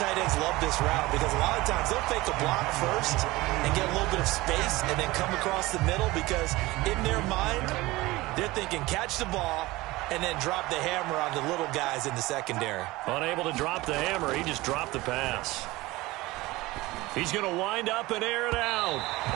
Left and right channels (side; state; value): left; quieter; 20.0 dB